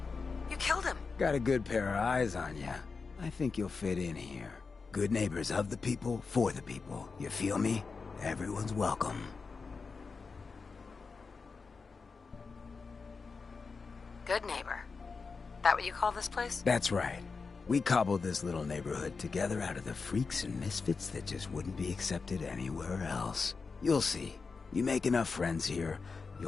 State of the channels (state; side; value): quieter; right; 4.7 dB